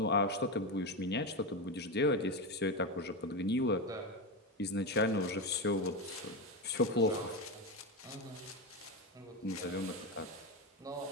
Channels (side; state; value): both; normal; correlation 0.15